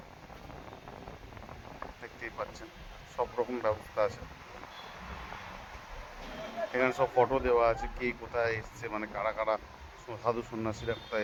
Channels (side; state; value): both; identical; correlation 1.00